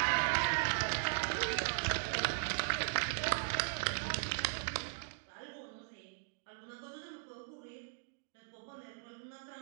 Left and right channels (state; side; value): silent; left; digital silence